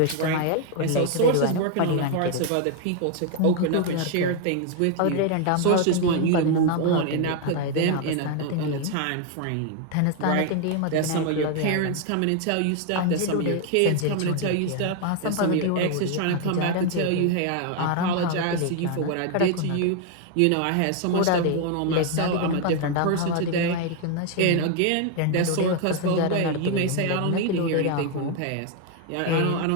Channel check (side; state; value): both; different; correlation 0.00